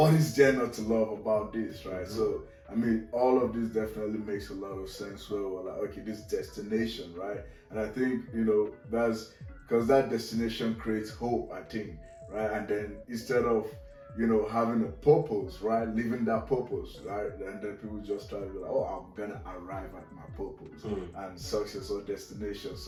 is there not to love about this, right? Mm-hmm. So, I mean, all of this definitely makes a lot of sense where we're like, okay, this destination, right? And I think, that's because that destination creates hope, I think, right? And then instead of, having a purpose, right? Living that purpose, right? And then people just try to be like, oh, I'm gonna arrive at my purpose and success or destination.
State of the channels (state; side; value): identical; both; correlation 1.00